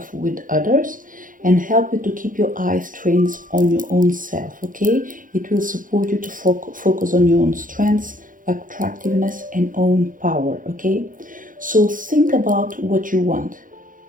with others and help you to keep your eyes trained on your own self, okay? It will support you to focus on your own strengths, attractiveness, and own power, okay? So think about what you want.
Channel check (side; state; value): left; late; 0.39 ms